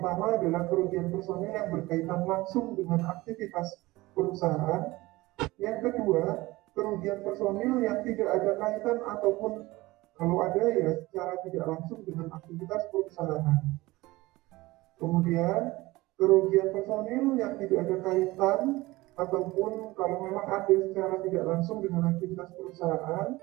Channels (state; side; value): quieter; left; 20.0 dB